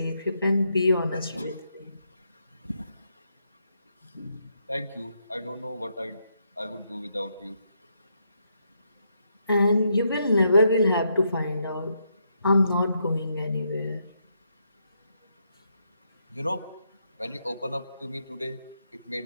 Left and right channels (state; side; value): inverted; both; correlation -0.78